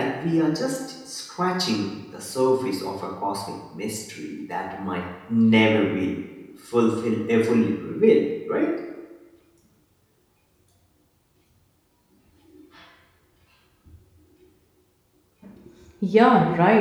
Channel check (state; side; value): identical; both; correlation 1.00